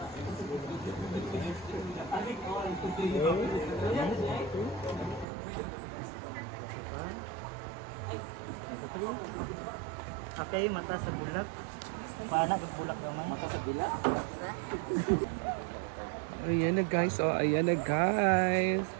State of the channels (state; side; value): drops out; left; at 5.2 s